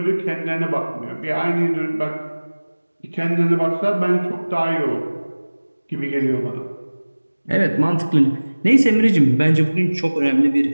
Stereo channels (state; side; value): inverted; both; correlation -1.00